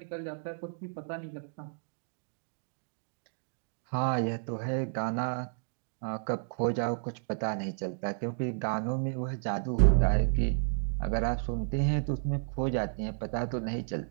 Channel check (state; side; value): silent; left; digital silence